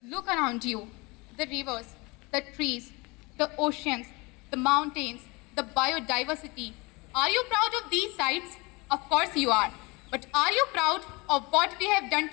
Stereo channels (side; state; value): right; quieter; 26.0 dB